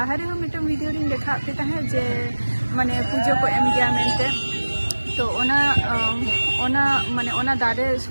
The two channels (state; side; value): inverted; both; correlation -1.00